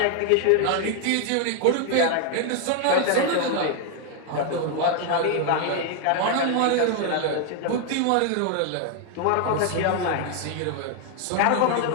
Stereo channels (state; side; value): different; both; correlation 0.01